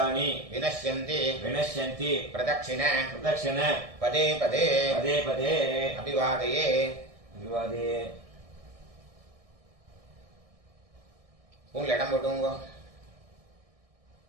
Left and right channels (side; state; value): left; late; 1.6 ms